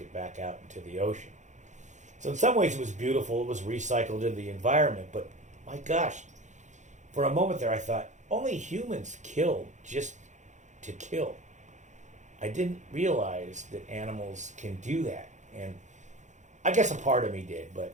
back out into the ocean. So in some ways it was beautiful. It was recycled into the environment. But my gosh, for a moment there I thought, only humans kill just to kill. I didn't realize that animals can do that. And I guess a part of me did, but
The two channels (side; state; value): left; late; 0.35 ms